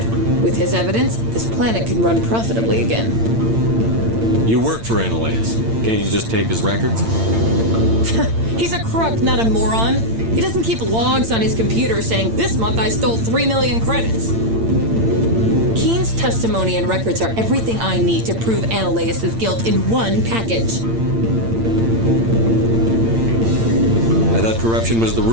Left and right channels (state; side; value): late; left; 8.8 ms